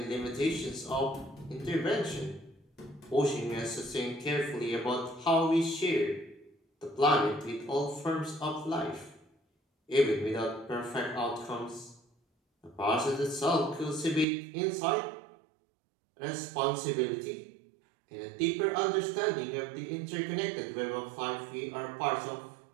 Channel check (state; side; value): drops out; left; at 14.2 s